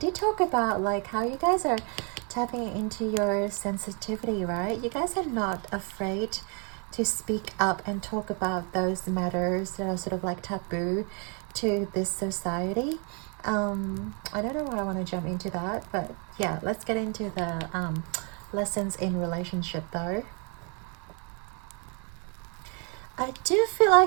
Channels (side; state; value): left; quieter; 36.4 dB